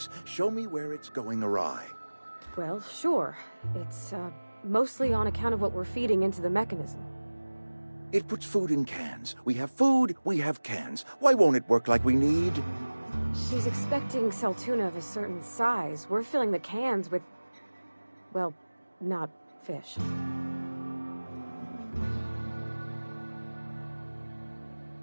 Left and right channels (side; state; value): both; inverted; correlation -1.00